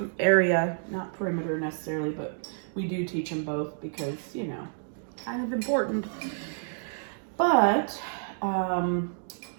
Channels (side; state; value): left; silent; digital silence